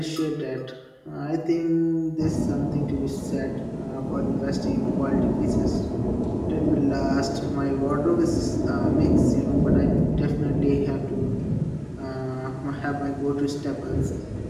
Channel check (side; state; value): both; identical; correlation 1.00